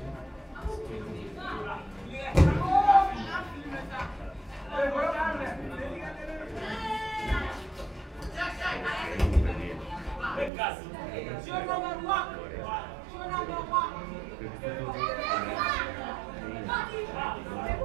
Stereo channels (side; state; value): left; drops out; at 10.5 s